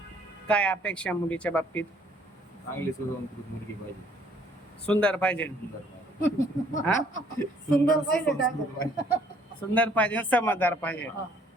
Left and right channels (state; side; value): normal; both; correlation 0.62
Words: काय अपेक्षा मुलीच्या बाबतीत? चांगली सुसंस्कृत मुलगी पाहिजे. सुंदर पाहिजे. हा? सुंदर पाहिजे. सुंदर पाहिजे, समजदार पाहिजे. हा.